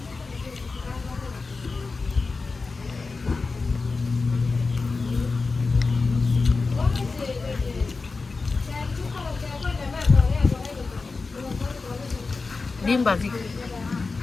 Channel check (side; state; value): right; quieter; 4.1 dB